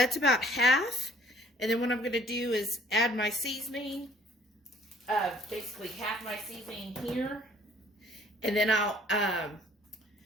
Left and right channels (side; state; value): both; normal; correlation 0.58